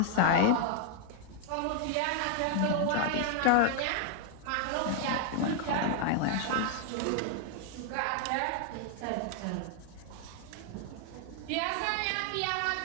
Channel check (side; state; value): both; different; correlation 0.00